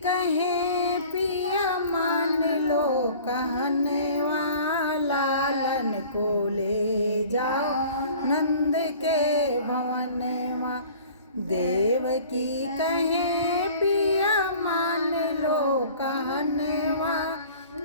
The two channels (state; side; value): inverted; both; correlation -0.47